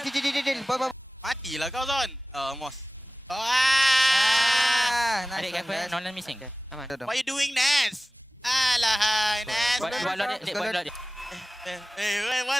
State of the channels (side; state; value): both; normal; correlation 0.96